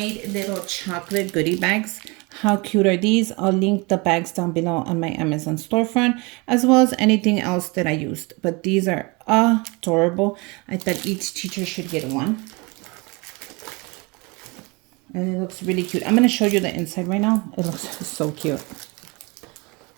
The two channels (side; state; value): left; quieter; 27.5 dB